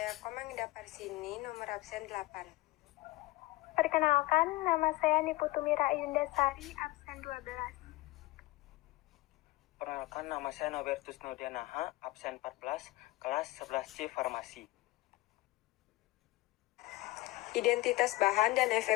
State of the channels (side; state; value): right; quieter; 19.4 dB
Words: Komang Ida Parsini, nomor absen 8. Perkenalkan, nama saya Niputumira Ayundasari, absen 12. Perkenalkan, nama saya Nobertus Nudianaha, absen 14, kelas 11C Farmasi. Identitas bahan dan